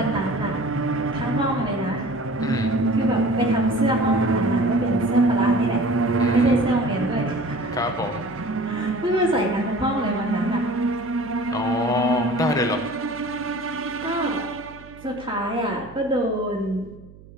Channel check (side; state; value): right; noise; hum, 21 dB below the sound